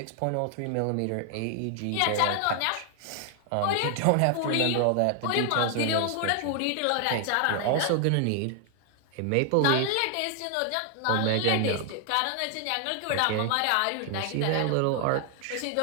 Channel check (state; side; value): different; both; correlation 0.00